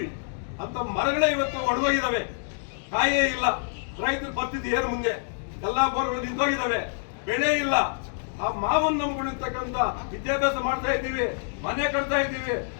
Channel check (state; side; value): silent; right; digital silence